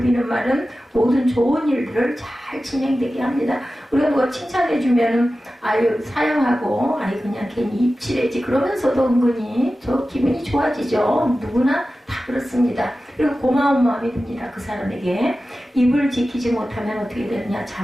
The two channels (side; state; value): both; normal; correlation 0.94